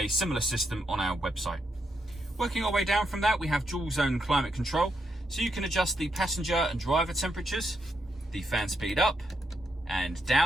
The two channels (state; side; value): normal; both; correlation 0.80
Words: similar system on our website. Working our way down from that, we have dual zone climate control. So you can adjust the passenger and driver temperatures, the fan speed up and